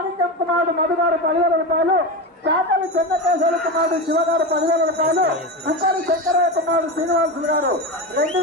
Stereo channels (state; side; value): normal; both; correlation 0.20